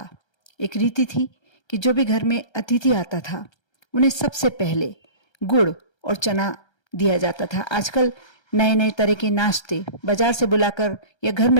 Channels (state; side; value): late; right; 1.3 ms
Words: एक रीति थी कि जो भी घर में अतिथि आता था उन्हें सबसे पहले गुड़ और चना दिया जाता था। आजकल नए नए तरह के नाश्ते बाजार से बुलाकर या घर